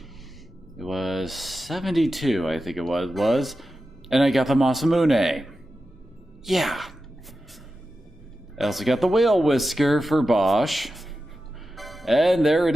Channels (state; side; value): normal; both; correlation 0.92